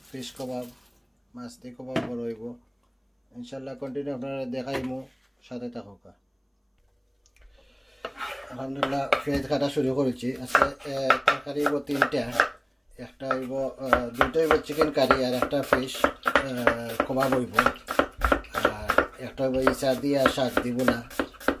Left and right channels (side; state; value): both; identical; correlation 1.00